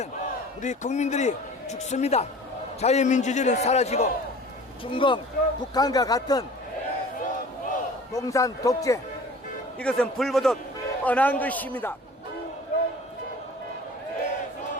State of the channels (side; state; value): both; normal; correlation 0.44